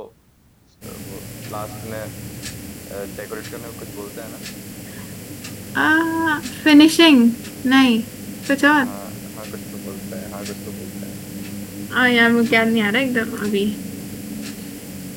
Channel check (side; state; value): both; identical; correlation 1.00